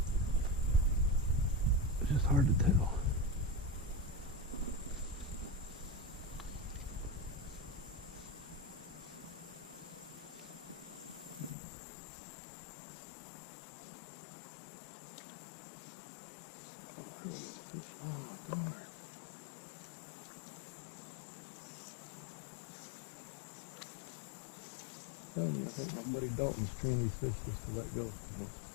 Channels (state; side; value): drops out; right; at 11.6 s